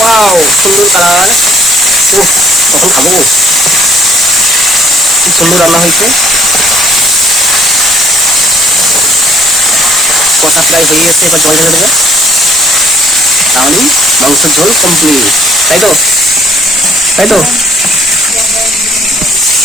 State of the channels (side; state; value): both; normal; correlation 0.61